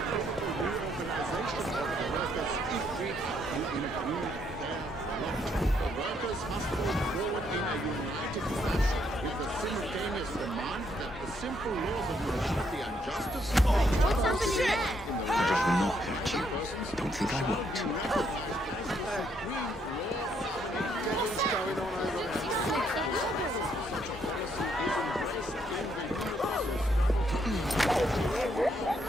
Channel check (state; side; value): normal; both; correlation 0.72